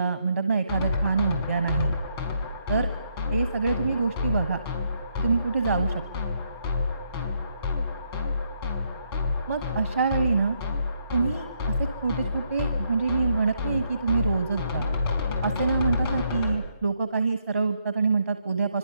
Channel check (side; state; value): both; inverted; correlation -0.75